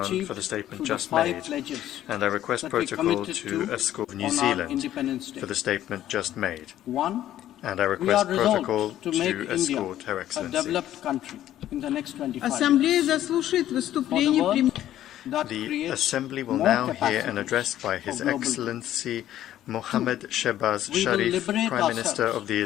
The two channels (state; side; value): quieter; right; 12.5 dB